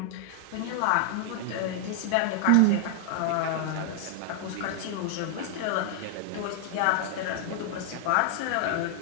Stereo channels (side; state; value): both; different; correlation 0.00